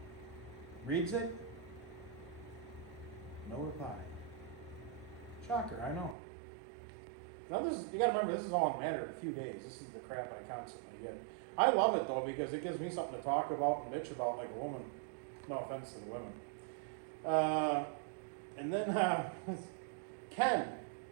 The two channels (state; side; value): drops out; left; at 6.2 s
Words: Reads it. No reply. Shocker, I know. Now you gotta remember, this is all in a matter of a few days. This is the crap I constantly get. I love it though, because it gives me something to talk about and bitch about like a woman. No offense to the women. And then, Ken,